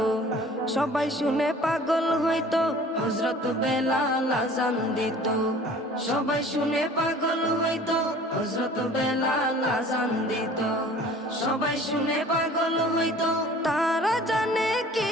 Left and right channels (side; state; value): both; normal; correlation 0.48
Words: সবাই শুনে পাগল হইতো হযরত বেলাল আযান দিত সবাই শুনে পাগল হইতো হযরত বেলাল আযান দিত সবাই শুনে পাগল হইতো তারা জানে কি